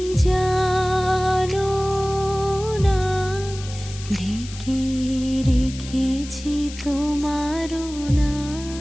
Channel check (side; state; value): left; noise; hiss, 15 dB below the sound